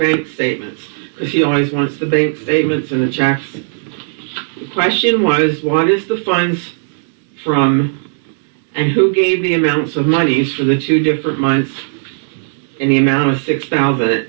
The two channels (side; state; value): left; silent; digital silence